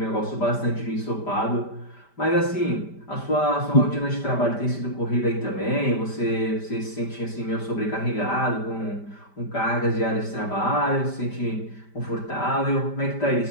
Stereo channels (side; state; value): right; late; 5.1 ms